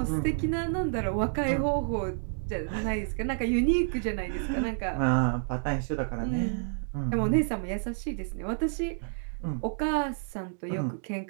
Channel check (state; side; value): silent; left; digital silence